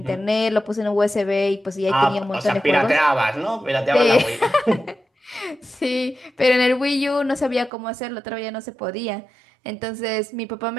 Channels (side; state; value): left; drops out; at 7.7 s